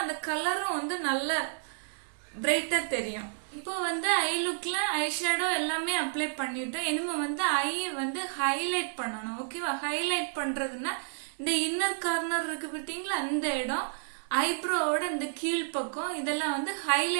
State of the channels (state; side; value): silent; left; digital silence